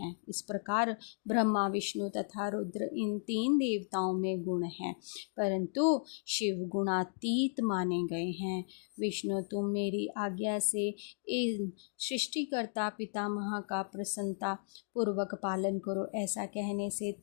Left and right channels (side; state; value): right; silent; digital silence